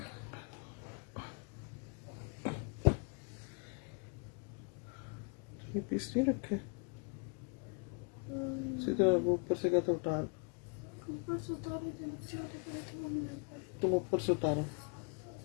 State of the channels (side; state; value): right; quieter; 37.1 dB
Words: ये पीस नहीं रखे सीधा, वो ऊपर से कहता उतार, तुम ऊपर से उतारो।